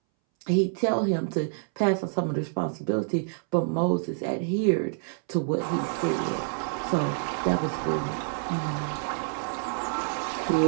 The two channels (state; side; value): silent; left; 60 dB below the other